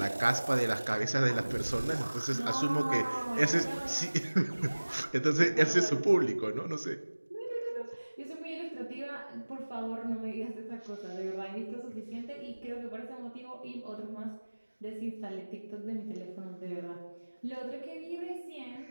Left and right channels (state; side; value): inverted; both; correlation -1.00